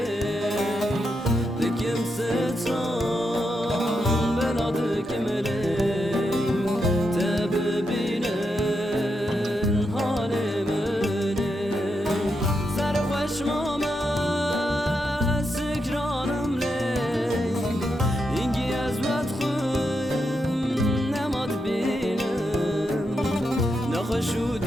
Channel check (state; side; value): normal; both; correlation 0.84